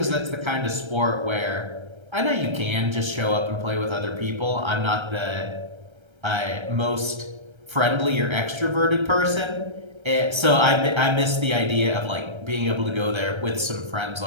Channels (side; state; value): left; late; 1.3 ms